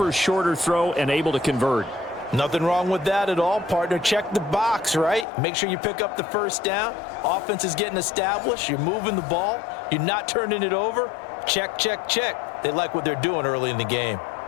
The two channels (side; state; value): right; drops out; at 5.2 s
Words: shorter throw and able to convert. Nothing wrong with that at all, partner. Check the box, right? Make sure you pick up the first down. Offense is getting established. You're moving the ball. You're not turning it over. Check, check, check. They like what they're doing early in the game.